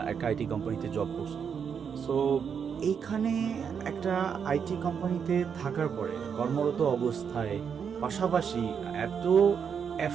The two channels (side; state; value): left; quieter; 7.0 dB